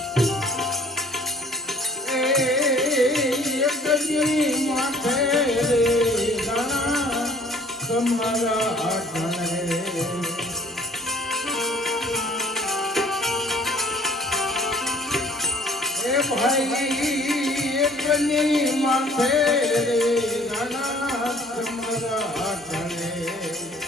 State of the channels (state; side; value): normal; both; correlation 0.54